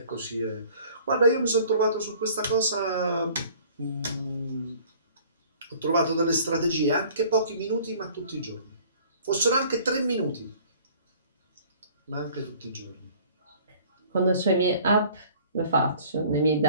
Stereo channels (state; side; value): inverted; both; correlation -0.52